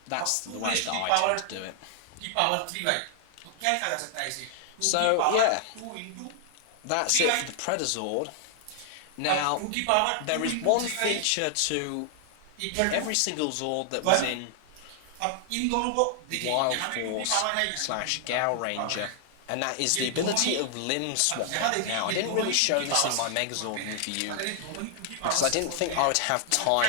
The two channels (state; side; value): different; both; correlation 0.00